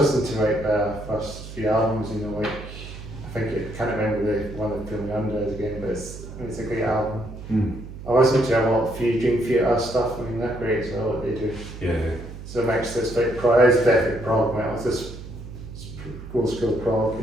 to like their first few albums, you know, like I can't remember the one that Film Under again, but it's a great album. I listen to a lot of Dream Theater stuff. I mean, they're great as well what they do. Yeah. So it makes this like it's definitely prog metal. It's just old school prog,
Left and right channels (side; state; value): right; noise; hum, 12 dB below the sound